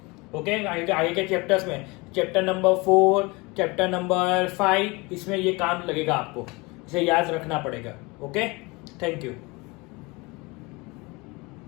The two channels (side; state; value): right; quieter; 25.3 dB